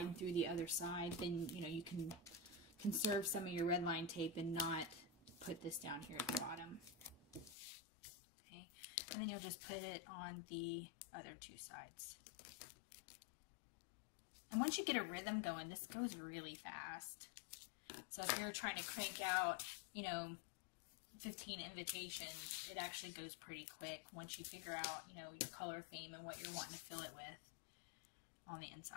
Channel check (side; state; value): right; drops out; at 7.6 s